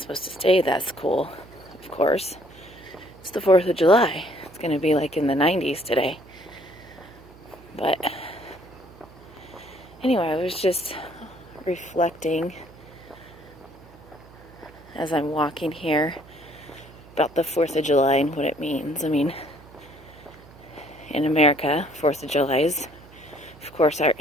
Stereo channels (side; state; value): right; noise; hum, 22 dB below the sound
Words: to stay that's cool, of course. It's the 4th of July. It's going to be like in the 90s today. But anyway, I was just reflecting as I'm walking here about the 4th of July and what it means. I mean, in America, 4th of July is, of course, our